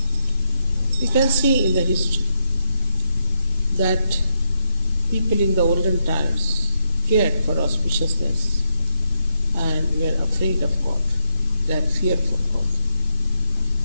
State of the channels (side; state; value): both; inverted; correlation -0.60